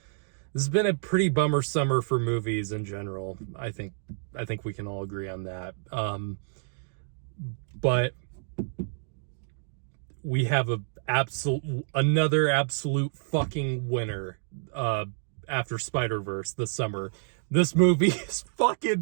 This has been a pretty bummer summer for movies in general. I think we can all agree on that. But we have another absolute fucking winner after Spider-Verse this summer. This movie is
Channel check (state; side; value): silent; left; digital silence